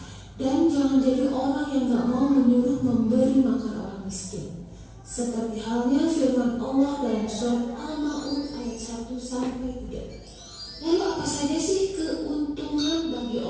Dan jangan jadi orang yang gak mau menyuruh memberi makan orang miskin. Seperti halnya firman Allah dalam surat Al-Ma'un ayat 1-3. Lalu apa saja sih keuntungan bagi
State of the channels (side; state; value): both; identical; correlation 1.00